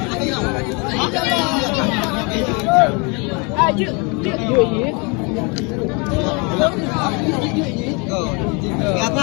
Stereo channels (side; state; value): right; quieter; 31.3 dB